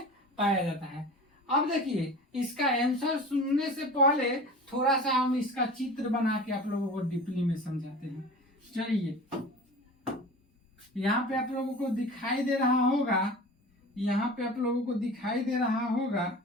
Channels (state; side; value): normal; both; correlation 0.37